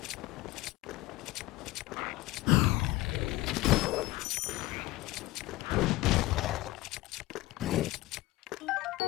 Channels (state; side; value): quieter; right; 18.4 dB